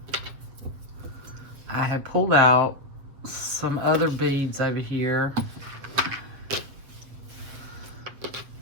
had pulled out some other beads over here.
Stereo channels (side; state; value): left; late; 7.9 ms